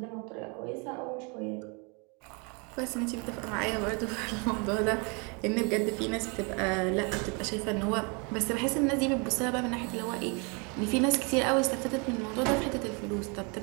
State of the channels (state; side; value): quieter; left; 33.0 dB